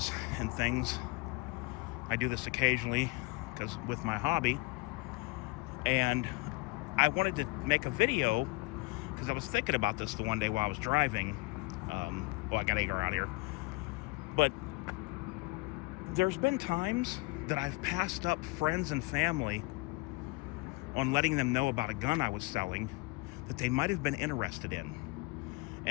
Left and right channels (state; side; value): quieter; right; 26.4 dB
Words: and things. I do this occasionally because with my hobby, and I wanted to make a video because I was thinking about this the one day while I was driving. I got to get out here. But there's been times that I've passed up friends and family on letting them know about a gun I was selling that they might have been interested in.